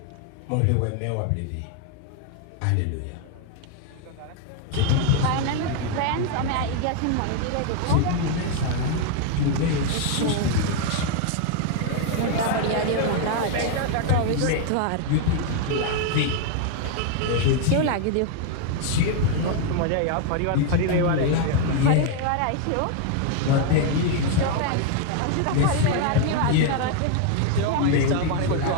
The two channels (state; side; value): different; both; correlation 0.00